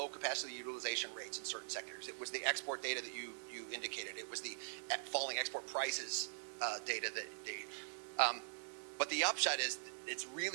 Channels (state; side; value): silent; left; digital silence